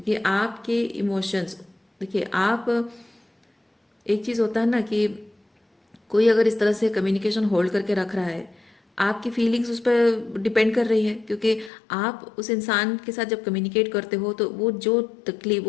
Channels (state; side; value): drops out; right; at 11.7 s